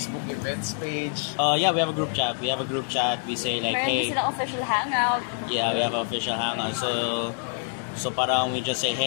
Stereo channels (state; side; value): silent; right; 61 dB below the other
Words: events page? Yeah, we have a group chat. We say like, Meron hey. din silang official hangout. Yeah, we have an official hangout. So parang we just say,